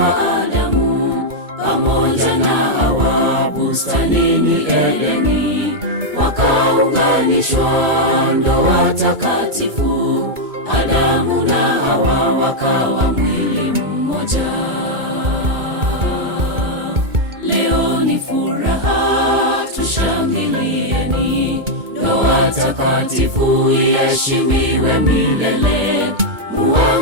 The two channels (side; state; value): left; late; 2.2 ms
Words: Adamu pamoja na Hawa bustanini Edeni, wakaunganishwa ndoa takatifu. Adamu na Hawa wakawa mwili mmoja. Leo ni furaha, tushangilieni. Ndoa takatifu iheshimiwe milele,